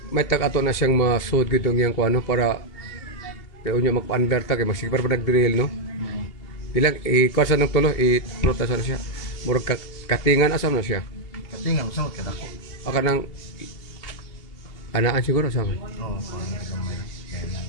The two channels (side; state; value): right; late; 2.8 ms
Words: May tag-ato na siyang masud gitong yang kuano para kaya unya magpa-under ta kay masigpar pa nag-drill no. Bilang kuasa ng tulo i-protasa na siya. Murag katingan asam na siya. Katingan sa mga kadako. Aka nang anaan siguro sa akin. Oo, parang gamay. Kaya lang.